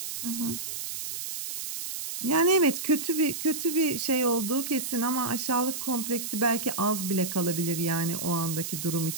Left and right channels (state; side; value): noise; right; hiss, 5 dB below the sound